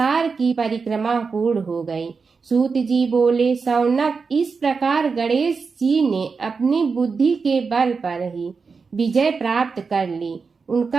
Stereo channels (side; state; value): left; quieter; 5.0 dB